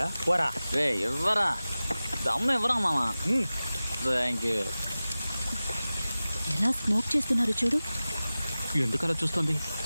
పోరా రే ఇవ్వరా, దమ్ము ఇవ్వరా మామా. Thank you. ఎలా స్మోక్ చేస్తున్నారు చూడు. ఎందుకలా చూస్తుంది?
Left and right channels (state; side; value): inverted; both; correlation -0.96